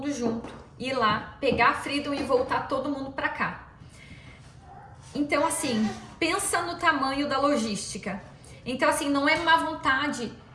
junto, ir lá, pegar a Freedom e voltar todo mundo para cá. Então, assim, pensa no tamanho da logística. Então, assim, não é má vontade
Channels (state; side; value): identical; both; correlation 1.00